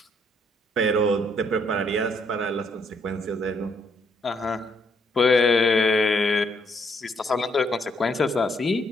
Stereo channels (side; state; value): both; normal; correlation 0.71